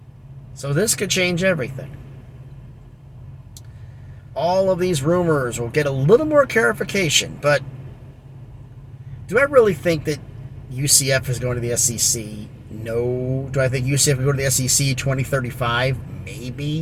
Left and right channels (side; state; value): both; identical; correlation 1.00